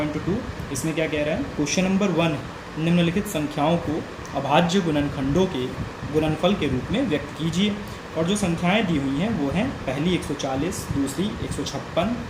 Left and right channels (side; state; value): both; identical; correlation 1.00